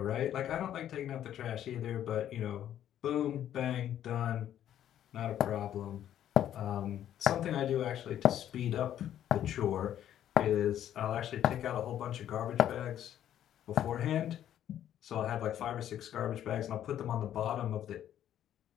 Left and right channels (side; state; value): right; quieter; 11.0 dB